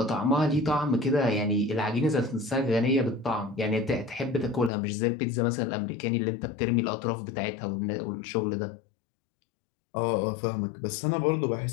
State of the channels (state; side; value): drops out; right; at 4.7 s